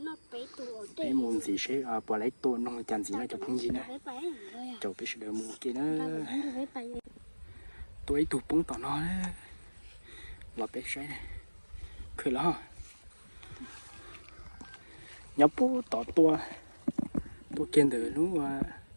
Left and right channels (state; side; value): inverted; both; correlation -1.00